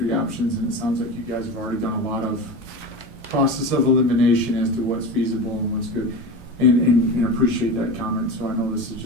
options, and it sounds like you guys have already done a lot of process of elimination as to what's feasible and what's good, and appreciate that comment. So I know this is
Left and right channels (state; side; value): normal; both; correlation 0.27